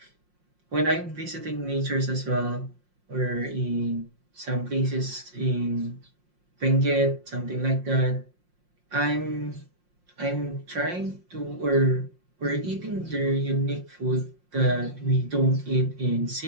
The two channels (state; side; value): late; left; 5.6 ms